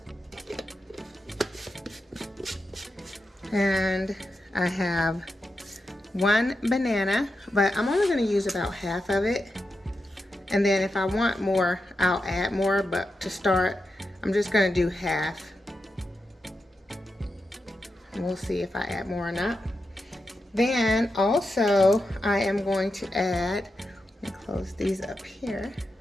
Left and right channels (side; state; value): both; normal; correlation 0.88